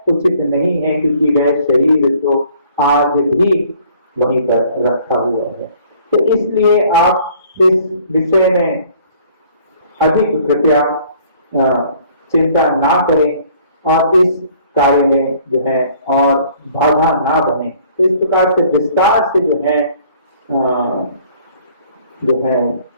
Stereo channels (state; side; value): inverted; both; correlation -0.57